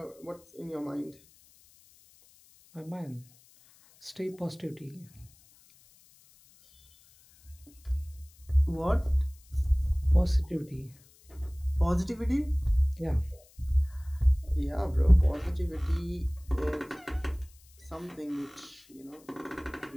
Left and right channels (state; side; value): noise; left; hiss, 28 dB below the sound